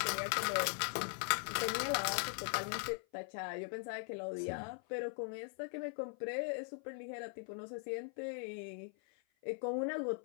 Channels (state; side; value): silent; right; 51 dB below the other